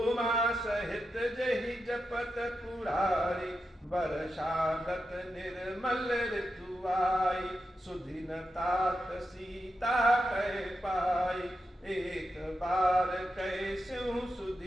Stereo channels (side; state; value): both; normal; correlation 0.88